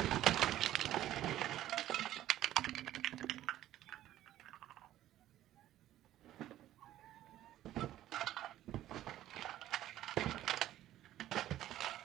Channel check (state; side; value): quieter; left; 13.4 dB